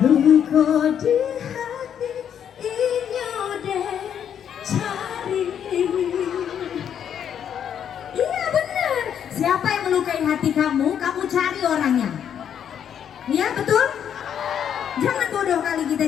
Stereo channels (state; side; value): quieter; right; 8.8 dB